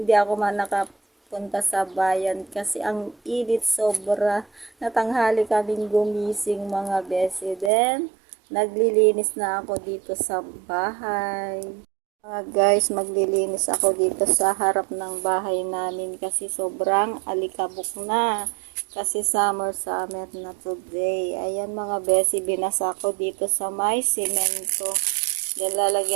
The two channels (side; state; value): left; drops out; at 7.7 s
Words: ako man nakapunta sa bayan kasi ang init sobra. Natanghali kaming gumising mga besi. Then, naglilinis na ako dito sa bahay. Mga guys, maglilinis ako dito sa harap ng bahay namin kasi sobrang alikabok na. Kasi summer na today. Ayan mga besi, binasa ko dito sa may semento. Then